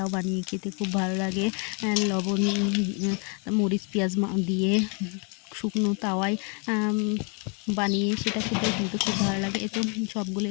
বানিয়ে খেতে খুব ভালো লাগে। লবণ, মরিচ, পেঁয়াজ দিয়ে শুকনো তাওয়ায় বানিয়ে সেটা খেতেও কিন্তু খুব ভালো লাগে। তো সবগুলো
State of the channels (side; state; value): right; quieter; 35.8 dB